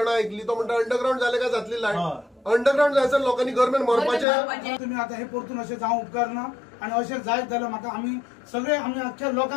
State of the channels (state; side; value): drops out; right; at 4.2 s